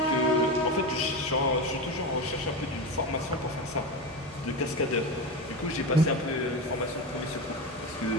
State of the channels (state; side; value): normal; both; correlation 0.20